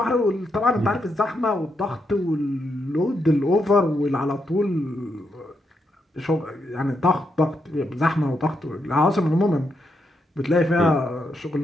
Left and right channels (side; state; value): both; normal; correlation 0.81